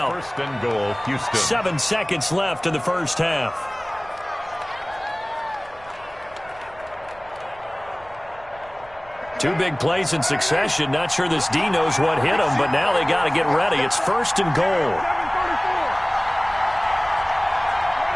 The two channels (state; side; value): noise; right; rumble, 24 dB below the sound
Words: 1st and goal, Houston. 7 seconds left in the first half. Two big plays in succession. Not sure this D knows what hit him, but now they got to get ready. It's 1st and goal.